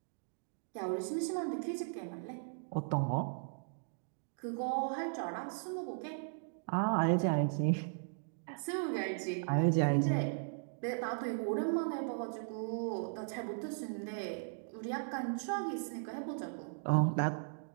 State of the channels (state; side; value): silent; left; digital silence